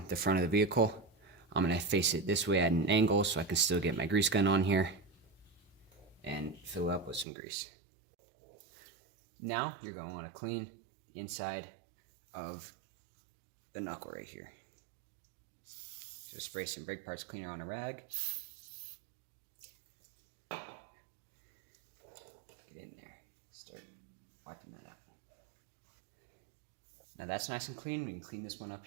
the front of the vehicle. I'm going to face it this way at an angle so I can still get my grease gun on here and fill it up with some grease. Now you're going to want to clean the inside of the knuckle right here. So spray some brake parts cleaner on a rag. Get in there. Start wiping that out. Now that's nice and clean. We can clean this one up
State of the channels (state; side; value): drops out; left; at 7.2 s